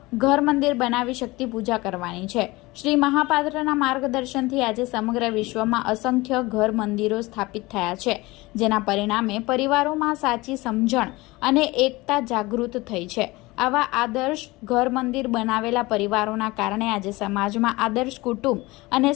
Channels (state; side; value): quieter; right; 21.5 dB